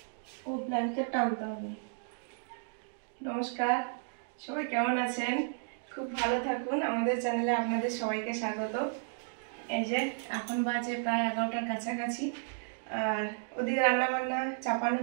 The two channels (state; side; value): silent; left; digital silence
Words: ও ব্ল্যাঙ্কেট টানতে হবে। নমস্কার, সবাই কেমন আছেন? খুব ভালো থাকুন। আমাদের চ্যানেলে আপনাদের সবাইকে স্বাগত। এই যে এখন বাজে প্রায় 11টার কাছাকাছি, আর ওদিকে রান্নাবান্না চাপানো